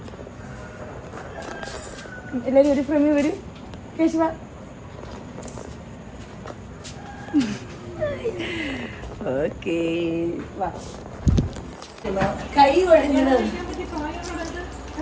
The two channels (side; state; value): both; identical; correlation 1.00